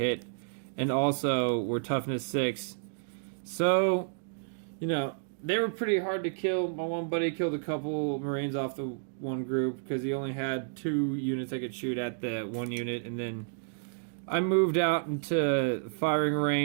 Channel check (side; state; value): left; silent; digital silence